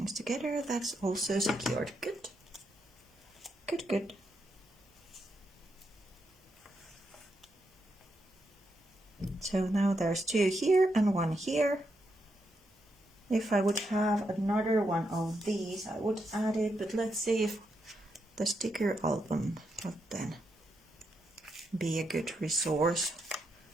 together. That's also secured. Good. Good, good. So now there's 2 here and 1 here. If I would have another one of these, I would add it, but let's see if the sticker album would then be a good resource.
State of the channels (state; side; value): normal; both; correlation 0.82